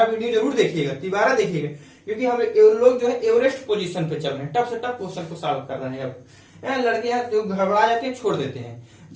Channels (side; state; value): both; identical; correlation 1.00